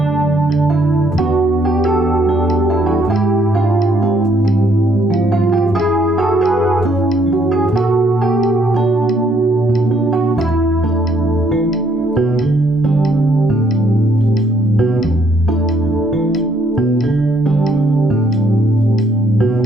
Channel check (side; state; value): both; normal; correlation 0.69